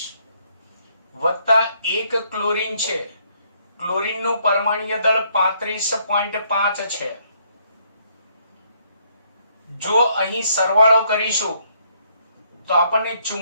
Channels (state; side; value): inverted; both; correlation -0.70